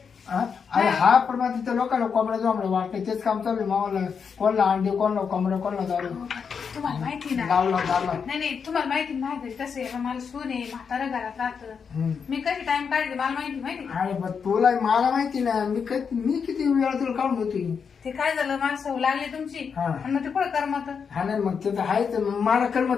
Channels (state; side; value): quieter; right; 6.3 dB